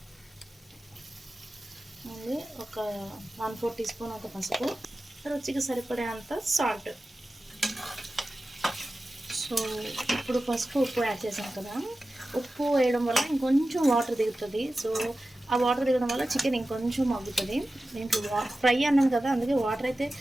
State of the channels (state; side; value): normal; both; correlation 0.94